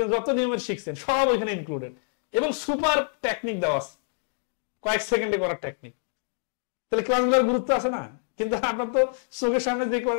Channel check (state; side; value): silent; right; digital silence